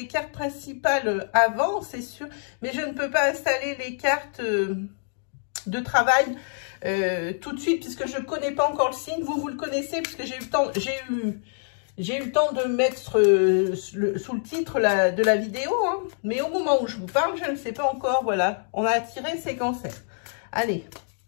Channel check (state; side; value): silent; right; digital silence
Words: cartes principales avant, c'est sûr, mais je ne peux pas installer les cartes de travail tout de suite, puisque je ne connais pas encore le signe. Vous le connaissez, puisque j'ai eu le temps, j'ai eu le temps de mettre sous le titre de la vidéo, hein. Mais au moment où je vous parle, je ne sais pas encore, voilà, on a tiré ces cancers. Allez,